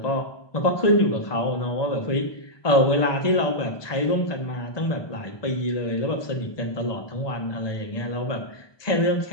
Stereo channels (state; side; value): late; right; 1.2 ms